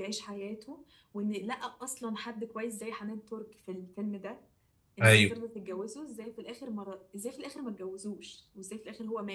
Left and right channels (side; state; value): both; identical; correlation 1.00